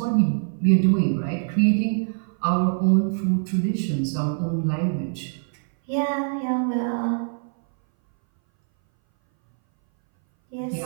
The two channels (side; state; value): left; silent; 60 dB below the other